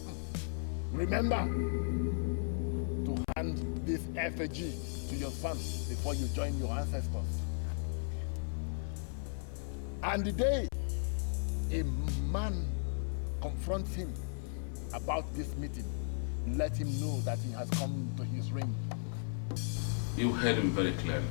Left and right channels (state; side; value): silent; right; 54 dB below the other